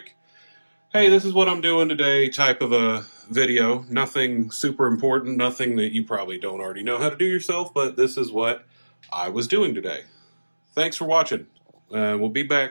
hey, this is what I'm doing today type of a video. Nothing super important, nothing that you probably don't already know how to do yourself, but this is what I was doing today. Thanks for watching. We'll be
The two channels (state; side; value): inverted; both; correlation -1.00